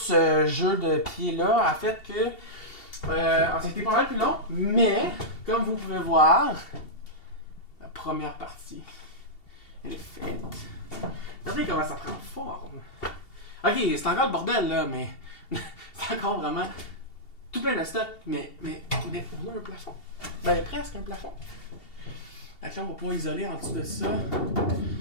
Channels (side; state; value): right; late; 2.7 ms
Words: jeu de pieds-là a fait que c'était pas mal plus long. Mais, comme vous pouvez voir, la première partie, elle est faite. Regardez comment ça prend forme. Ok, c'est encore le bordel là, mais c'est encore vraiment tout plein de stock. Mais on a un plafond. Ben, presque un plafond. Donc là, on va pouvoir isoler en dessous de ça.